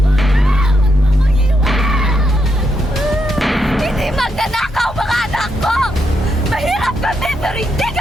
Hindi magnanakaw mga anak ko! Mahirap kami pero hindi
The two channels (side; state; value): both; normal; correlation 0.81